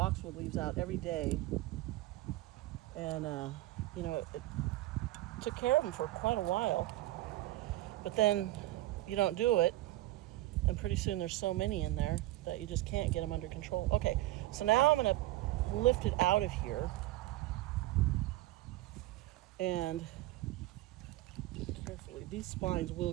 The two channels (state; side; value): quieter; left; 16.9 dB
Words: leaves out every day, and you know, it took care of them for quite a while. But then you don't do it, and pretty soon there's so many in there that you just can't get them under control. Okay, so now I'm gonna lift it out of here, and carefully, these spines will